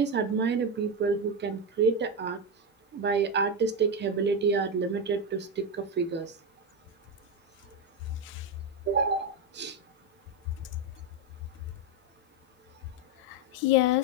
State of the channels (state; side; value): normal; both; correlation 0.10